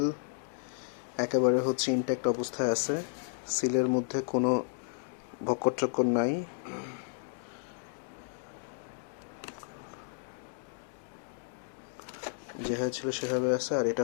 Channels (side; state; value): right; silent; digital silence